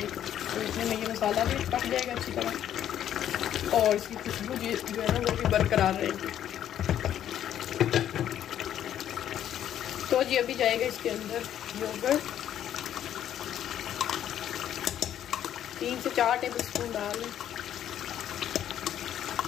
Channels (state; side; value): quieter; right; 10.7 dB